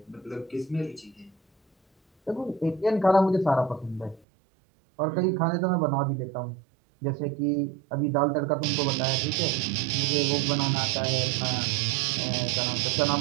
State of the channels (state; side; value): drops out; left; at 4.2 s